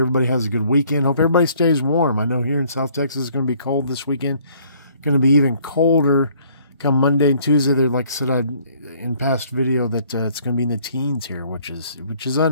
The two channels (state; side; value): inverted; both; correlation -0.60